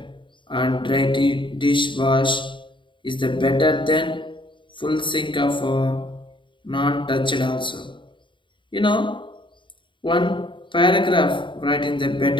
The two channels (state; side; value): late; right; 0.24 ms